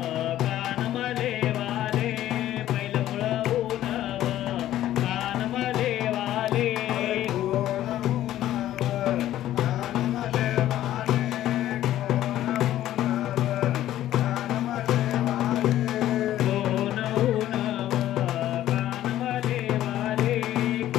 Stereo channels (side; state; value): right; quieter; 13.2 dB